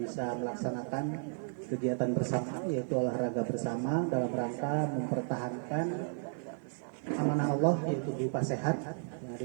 melaksanakan kegiatan bersama, yaitu olahraga bersama dalam rangka mempertahankan amanah Allah, yaitu berupa sehat yang ada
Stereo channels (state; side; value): silent; left; 55 dB below the other